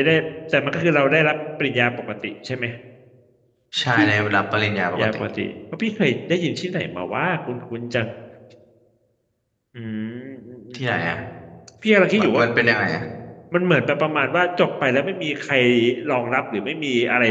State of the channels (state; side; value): identical; both; correlation 1.00